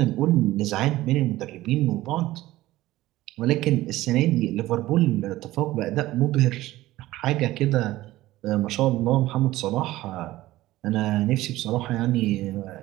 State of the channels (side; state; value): left; quieter; 16.6 dB